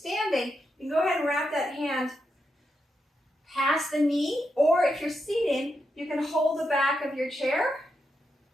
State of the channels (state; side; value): normal; both; correlation 0.84